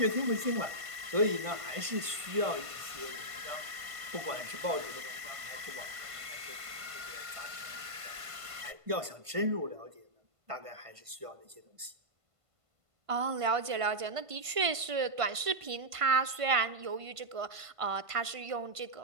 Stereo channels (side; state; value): left; late; 1.5 ms